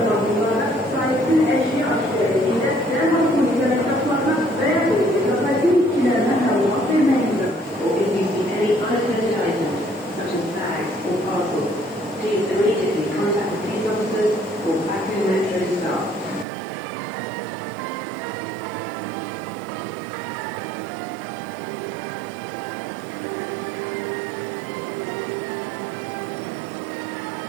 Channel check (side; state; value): left; drops out; at 16.4 s